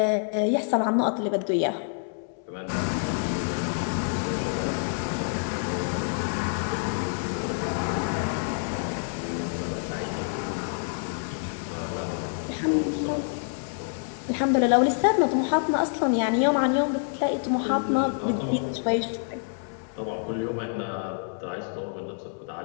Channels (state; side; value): silent; right; digital silence